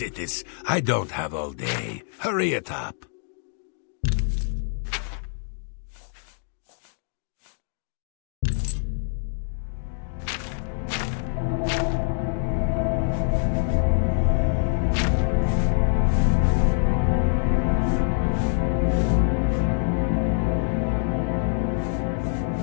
I don't have all day. Hurry it up.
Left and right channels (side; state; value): right; silent; digital silence